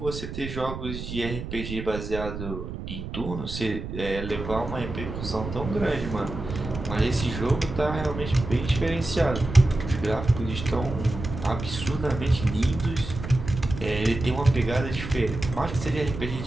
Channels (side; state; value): right; noise; rumble, 7 dB below the sound